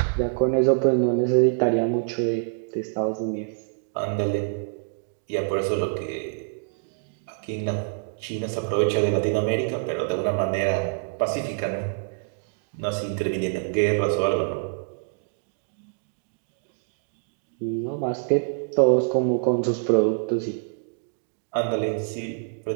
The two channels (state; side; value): silent; left; digital silence